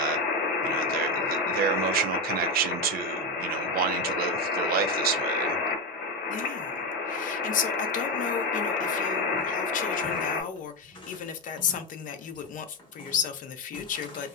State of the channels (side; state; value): both; normal; correlation 0.12